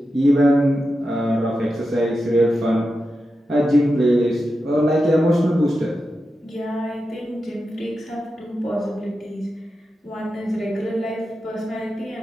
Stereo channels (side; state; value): both; normal; correlation 0.90